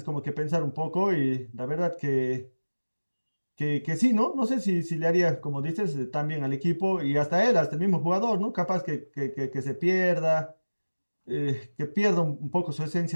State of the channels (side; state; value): both; inverted; correlation -1.00